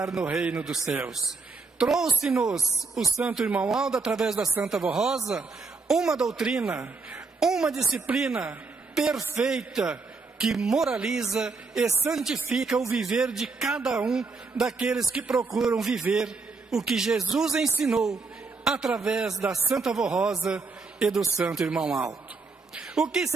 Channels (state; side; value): quieter; left; 4.2 dB